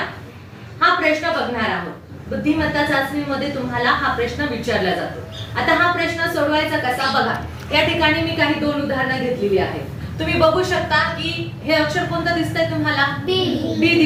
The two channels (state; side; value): identical; both; correlation 1.00